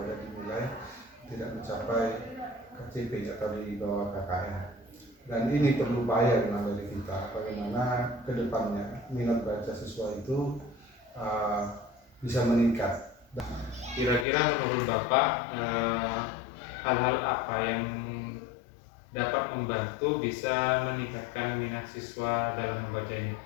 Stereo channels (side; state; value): right; drops out; at 14.2 s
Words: di nilai tidak mencapai KCP atau di bawah KKM. Dan ini perlu upaya dari kita bagaimana ke depannya minat baca siswa itu bisa meningkat. Kira-kira menurut Bapak hal-hal apa yang dapat membantu bisa meningkatkan minat siswa dalam membacanya?